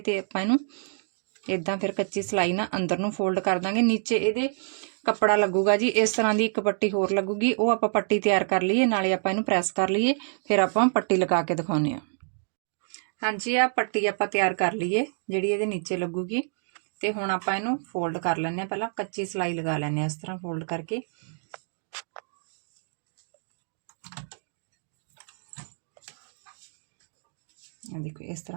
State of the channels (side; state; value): left; silent; 60 dB below the other